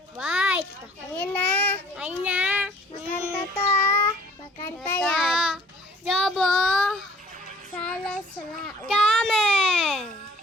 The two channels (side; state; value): both; normal; correlation 0.55